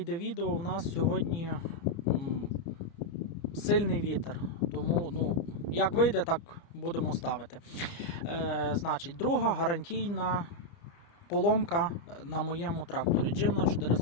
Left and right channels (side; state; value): right; late; 30 ms